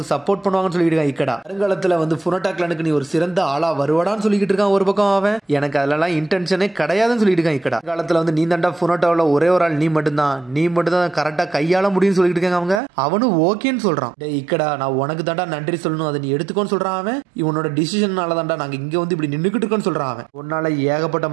சப்போர்ட் பண்ணுவாங்கன்னு சொல்லிட்டு இருக்காங்க இக்கடா. வருங்காலத்துல வந்து ஃபுனோட்டா கிளானுக்கு நீ ஒரு சிறந்த ஆளா வருவாடான்னு சொல்லிட்டு இருக்கான் ஒரு பக்கம் அவன். எனக்கு அதெல்லாம் இன்டென்ஷனே கிடையாதுன்னு சொல்லிட்டு இருக்கான் இக்கடா. காலத்துல வந்து நீ தாண்டா ஃபுனோட்டாவில் ஒரே ஒரு ஆள், நீ மட்டும் தான் கரெக்டா கையாள முடியும்னு சொல்லிட்டு இருக்காங்க அவங்க. அவனும் ஓகேன்னு சொல்றான். டேய் இக்கடா நான் உனக்கு தாண்டா நன்றி சொல்லணும், அதை நீ எடுத்துக்கோன்னு சொல்றான் அவன். இவனோட டிசிஷனால தாண்டா நாங்க இங்க வந்து இப்படி நின்னுக்கிட்டு இருக்கோம்னு சொல்றான் அவன். உன்னால ஏகப்பட்ட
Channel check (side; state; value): left; drops out; at 12.8 s